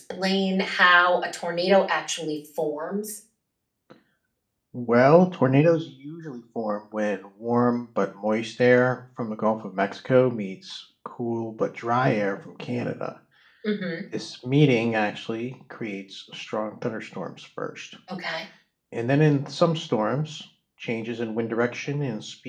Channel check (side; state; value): both; identical; correlation 1.00